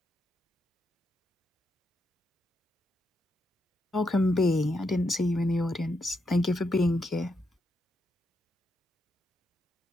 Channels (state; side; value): normal; both; correlation 0.81